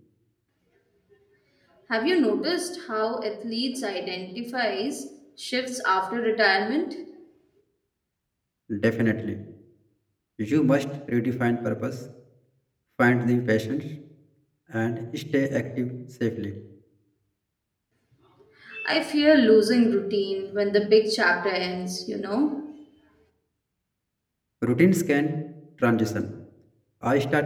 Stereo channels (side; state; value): both; identical; correlation 1.00